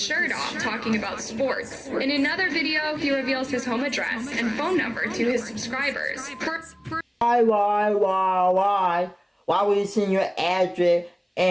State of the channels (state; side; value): identical; both; correlation 1.00